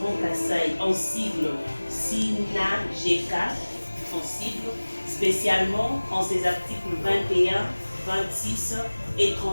Grand Kassai en sigle SINAGK, en sigle, spécialement en ses articles 21, 26 et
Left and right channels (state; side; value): inverted; both; correlation -1.00